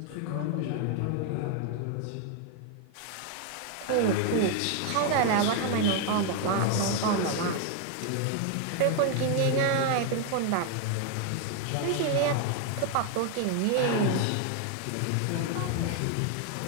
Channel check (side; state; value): both; different; correlation 0.00